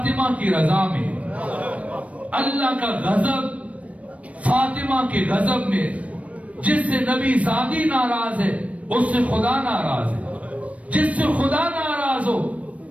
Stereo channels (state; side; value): late; left; 0.065 ms